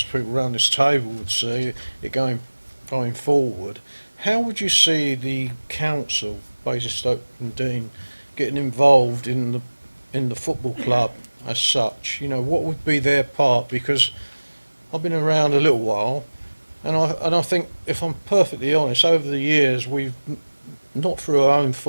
people around this table would see it going forward, how would you see the council, Basingstoke and Dean, getting involved in the football club as such? You know, what would be their part? Because I've been around a little while, and I think, if I'm perfectly honest, over the years we've, not through our own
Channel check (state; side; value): inverted; both; correlation -1.00